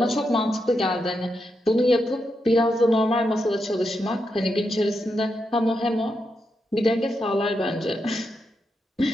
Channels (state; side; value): normal; both; correlation 0.84